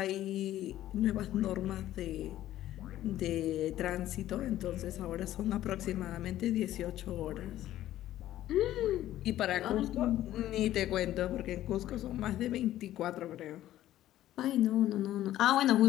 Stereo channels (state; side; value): quieter; right; 13.5 dB